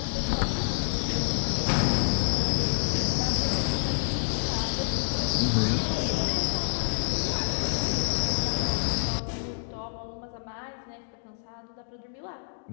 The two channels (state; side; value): silent; right; digital silence